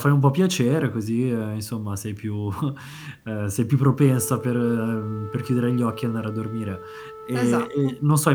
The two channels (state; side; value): identical; both; correlation 1.00